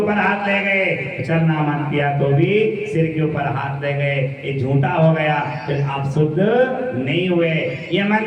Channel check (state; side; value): identical; both; correlation 1.00